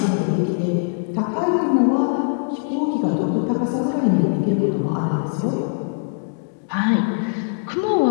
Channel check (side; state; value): right; silent; digital silence